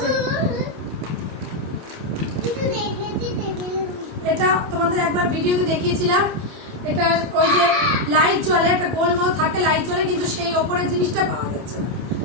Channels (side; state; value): left; late; 28 ms